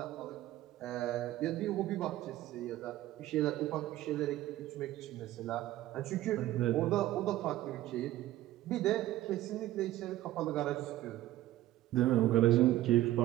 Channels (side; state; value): left; quieter; 14.8 dB